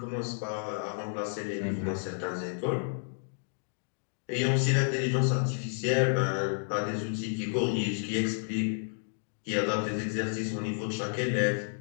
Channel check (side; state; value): right; silent; digital silence